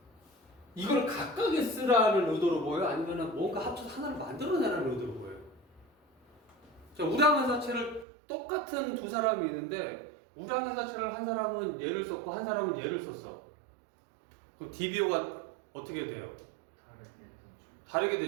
이걸 각각에 쓰라는 의도로 보여요? 아니면 뭔가 합쳐서 하나를 만들어내라는 의도로 보여요? 자, 우량회사채를 똑같은 두 사람이 있는데 우량회사채를 한 사람은 얘를 썼고 한 사람은 얘를 썼어. 그럼 DBO가 어떻게 돼요? 다르게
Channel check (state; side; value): drops out; left; at 8.1 s